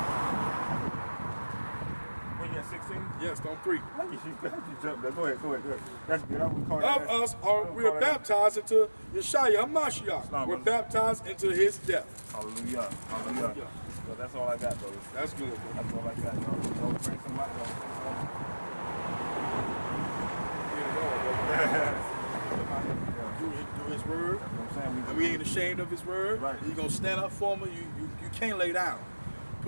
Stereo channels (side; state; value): both; inverted; correlation -1.00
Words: Wait, you at 16? Yes, on 3. You jumped there. Go ahead. That's good. I'm gonna call Of us we're baptized into Yeshua HaMashiach. We're baptized into his death. Hallelujah. So that's all I got, brother. That's good. That's all I got, y'all. Don't bring some light, Do his word. And we ain't ashamed of his word. Right. You're going to stand up for him. You can't lay down.